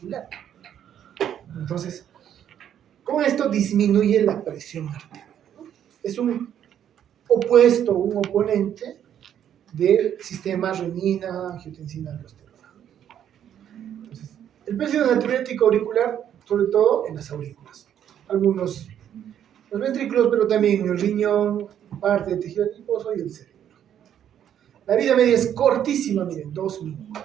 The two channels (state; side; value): quieter; left; 9.8 dB